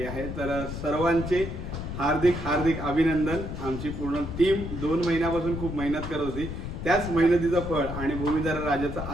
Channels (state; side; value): noise; left; rumble, 6 dB below the sound